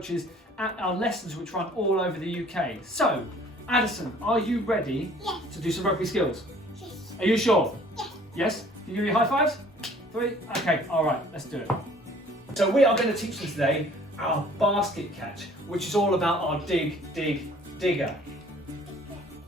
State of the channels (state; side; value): normal; both; correlation 0.54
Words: at our lessons which run all over the UK. So, Addison, are you ready to do some rugby skills? Yes. Are you sure? Yes. Yes? Can you give me high fives? 3? Okay, alright, let's do it. So we are going to teach you today our basket catch, which is all about our dig, digger.